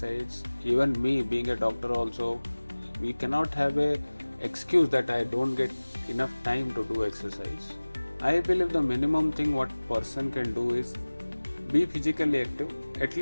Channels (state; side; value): inverted; both; correlation -1.00